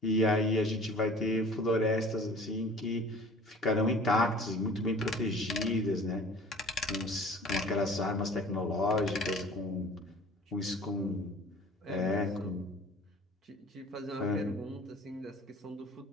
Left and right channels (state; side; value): normal; both; correlation 0.46